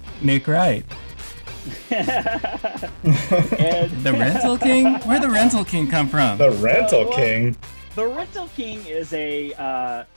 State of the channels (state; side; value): inverted; both; correlation -1.00